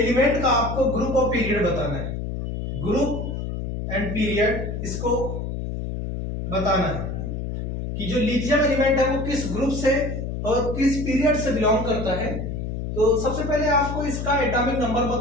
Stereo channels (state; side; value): noise; left; hum, 4 dB below the sound